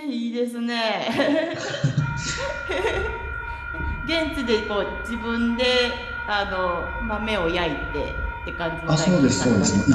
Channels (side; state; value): both; identical; correlation 1.00